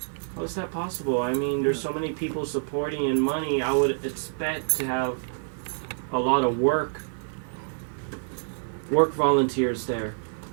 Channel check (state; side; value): silent; left; 60 dB below the other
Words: How is that possible? I mean, there's so many people supporting and money. I would expect to have a lot of work volunteers there.